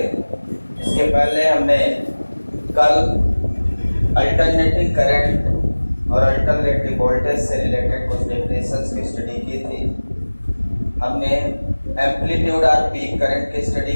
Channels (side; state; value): both; inverted; correlation -1.00